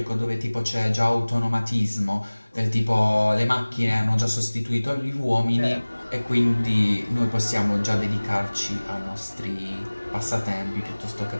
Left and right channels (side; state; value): both; inverted; correlation -1.00